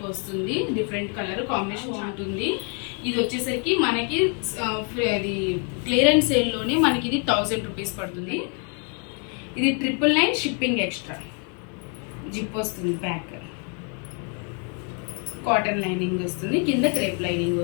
వస్తుంది, డిఫరెంట్ కలర్ కాంబినేషన్ ఉంటుంది. ఇది వచ్చేసరికి మనకి అది క్లియరెన్స్ సేల్లోనే మనకి ఇది 1000 రూపీస్ పడుతుంది. ఇది 999 షిప్పింగ్ ఎక్స్ట్రా. జిప్ వస్తుంది, బ్యాక్ కాటన్ లైనింగ్ వస్తుంది, కింద క్రేప్ లైనింగ్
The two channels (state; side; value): quieter; right; 39.3 dB